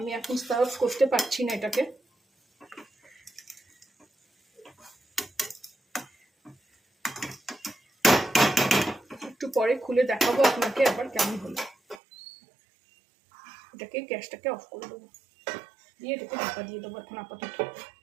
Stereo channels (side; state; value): left; drops out; at 12.0 s